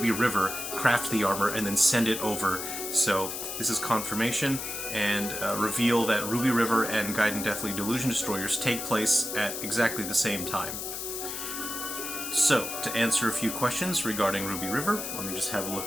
River, craft the armor, and then send it over. So this is confirmation and reveal that Ruby River and Gaiden Deathly Delusion Destroyers take place at exactly the same time. So, to answer a few questions regarding Ruby River, let me just have a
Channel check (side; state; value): left; noise; hiss, 5 dB below the sound